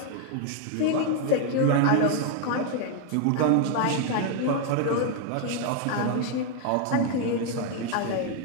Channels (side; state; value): both; different; correlation 0.01